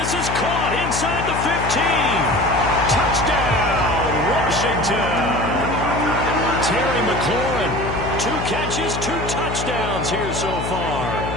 is caught inside the 15. Touchdown, Washington. Terry McLaurin, 2 catches, 2 touchdowns here so far.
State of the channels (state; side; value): noise; left; hum, 5 dB below the sound